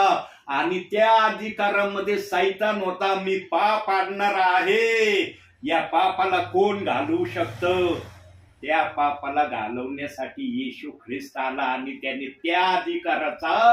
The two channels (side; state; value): both; identical; correlation 1.00